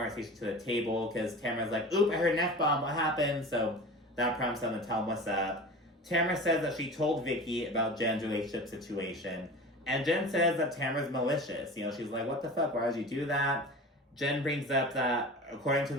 to the table because Tamra's like, oop, I heard an F-bomb, what happened? So that prompts them to tell them what's up. Tamra says that she told Vicki about Jen's relationship situation. And Jen says that Tamra's malicious. You know, she's like, what the fuck? Why would you do that? Jen brings up that, according to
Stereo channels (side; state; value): both; normal; correlation 0.35